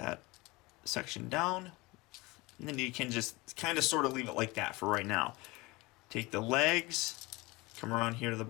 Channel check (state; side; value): quieter; right; 22.9 dB